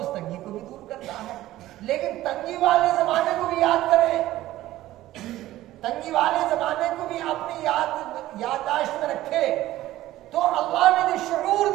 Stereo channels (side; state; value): left; quieter; 15.3 dB